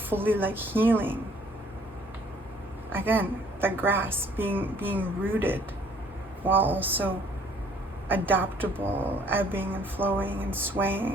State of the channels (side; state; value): both; normal; correlation 0.59